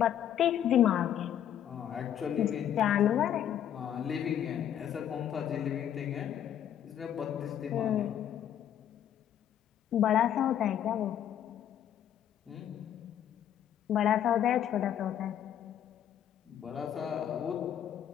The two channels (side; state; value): right; quieter; 10.2 dB